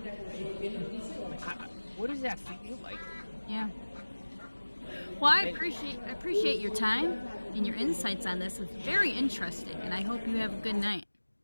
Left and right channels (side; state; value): both; inverted; correlation -1.00